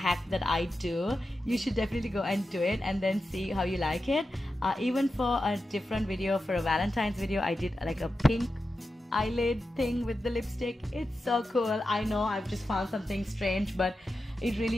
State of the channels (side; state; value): both; normal; correlation 0.91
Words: that I do, you should definitely go and do it and then see how you like it. Even for a different video, for a Valentine's video, I did like a pink eyelid thing with the lipstick. It's so cool. I know I've just found something strange, but it